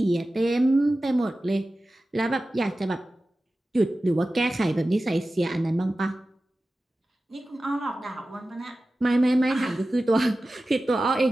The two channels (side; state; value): both; normal; correlation 0.95